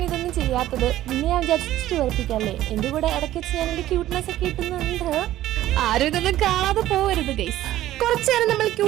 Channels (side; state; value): left; quieter; 14.0 dB